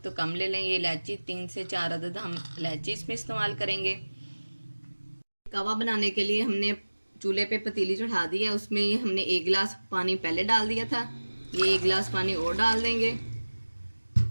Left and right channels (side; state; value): both; inverted; correlation -1.00